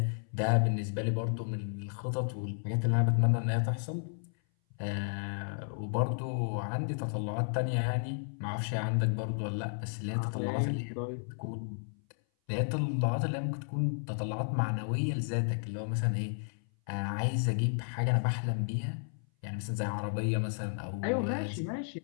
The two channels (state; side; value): silent; right; 56 dB below the other